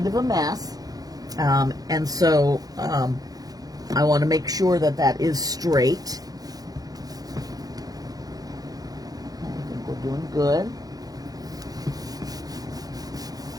of a mess, and so I want to make sure that that is straight. I think we're doing good.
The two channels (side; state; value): left; late; 0.18 ms